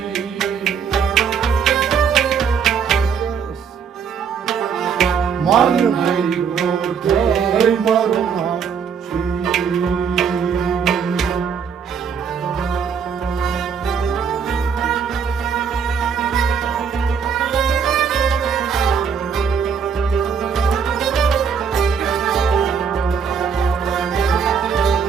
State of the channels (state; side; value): quieter; left; 6.7 dB